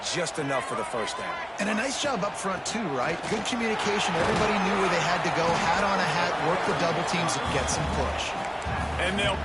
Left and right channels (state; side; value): identical; both; correlation 1.00